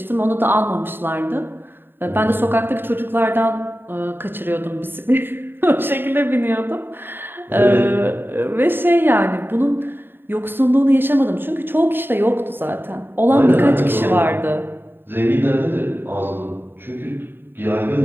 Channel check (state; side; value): late; left; 0.10 ms